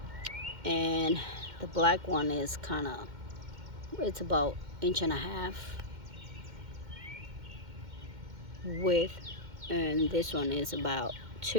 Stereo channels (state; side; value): late; left; 2.1 ms